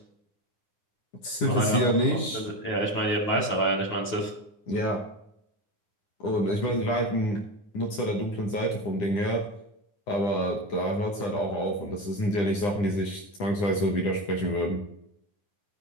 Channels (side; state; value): right; late; 9.9 ms